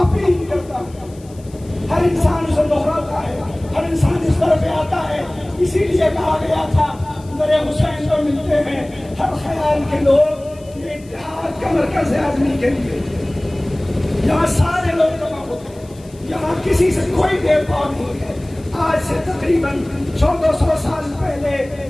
اپیل کرتا ہے۔ ہر انسان اسے دہراتا ہے، ہر انسان اس طرح پہ آتا ہے۔ اسی لیے کہا گیا تھا میرے حسین کو ملتے ہیں ہر خیال کے لوگ، یہ اتحاد کا مرکز ہے آدمی کے لیے۔ یہاں سارے لوگ جمع ہوتے ہیں، یہاں کسی سے کوئی بھید بھاؤ نہیں ہے۔ آج سے تقریباً 1400 سال پہلے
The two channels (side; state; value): left; noise; hiss, 26 dB below the sound